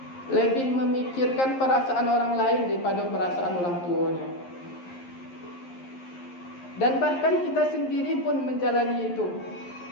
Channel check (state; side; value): late; right; 11 ms